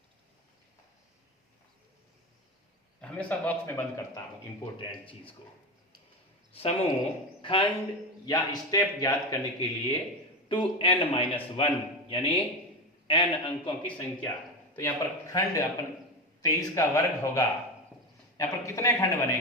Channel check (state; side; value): normal; both; correlation 0.19